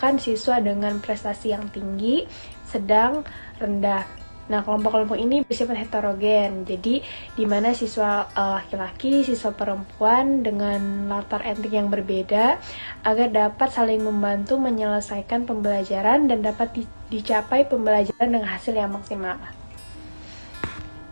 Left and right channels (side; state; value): both; inverted; correlation -1.00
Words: siswa dengan prestasi yang tinggi, sedang, rendah. Nah, kelompok-kelompok ini bersifat heterogen, jadi di mana siswa laki-laki, siswa perempuan dengan latar etnik yang berbeda agar dapat saling membantu menyelesaikan pembelajaran dan dapat dicapai pembelajaran dengan hasil yang maksimal.